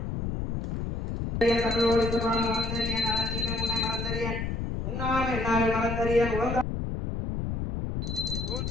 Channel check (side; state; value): left; noise; rumble, 3 dB below the sound